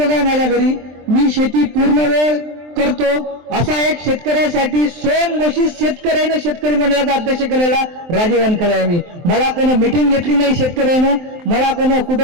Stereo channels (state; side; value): late; left; 23 ms